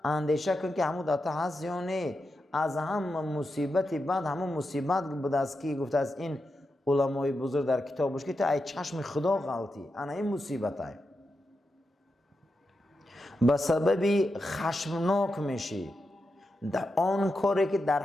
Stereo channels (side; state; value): both; normal; correlation 0.88